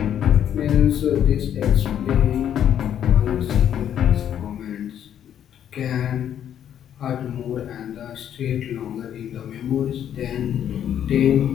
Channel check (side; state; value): right; quieter; 9.8 dB